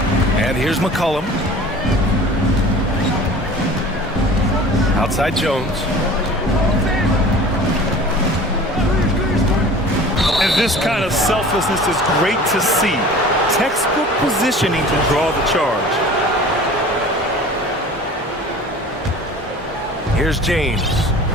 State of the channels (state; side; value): normal; both; correlation 0.43